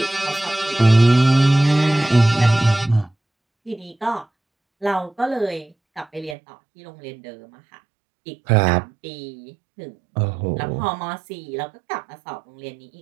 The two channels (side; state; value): left; drops out; at 6.4 s